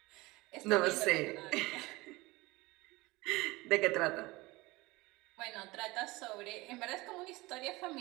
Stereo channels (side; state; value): left; quieter; 21.7 dB